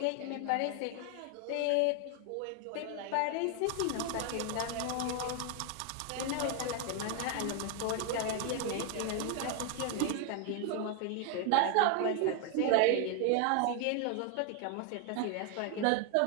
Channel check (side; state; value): both; different; correlation 0.00